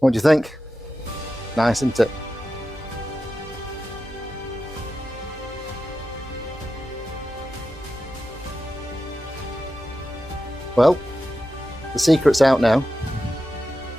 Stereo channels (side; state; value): both; normal; correlation 0.91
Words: do you think? Nice, isn't it? Well, the secret's out now.